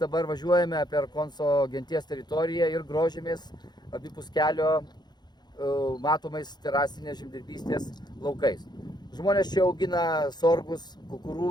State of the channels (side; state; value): right; late; 0.21 ms